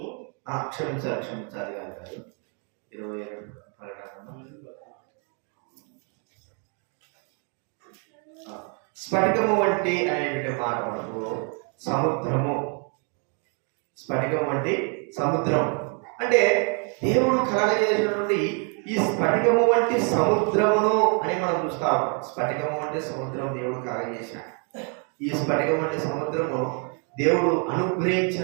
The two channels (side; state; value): left; quieter; 39.2 dB